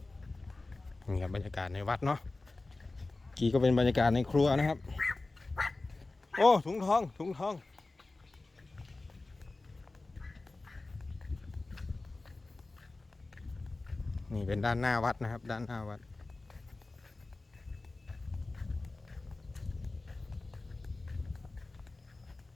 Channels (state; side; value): quieter; right; 3.3 dB